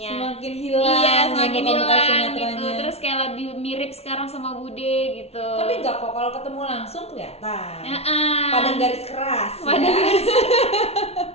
semakin hilang gitu. Terus kayak lebih mirip sekarang sama Bude gitu. Tapi enggak kok, kalau ketemu langsung kelihatan. Padang garis keras.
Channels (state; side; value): late; right; 0.30 ms